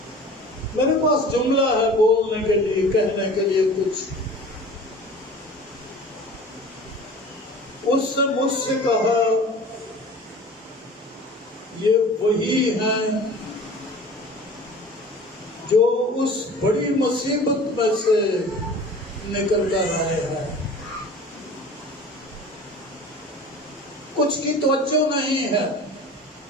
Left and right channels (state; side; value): normal; both; correlation 0.41